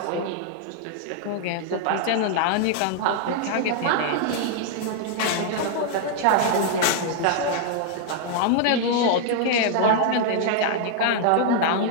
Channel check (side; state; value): both; different; correlation -0.01